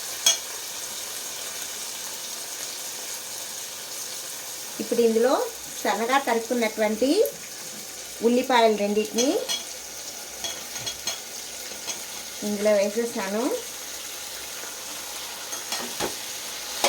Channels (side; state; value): both; identical; correlation 1.00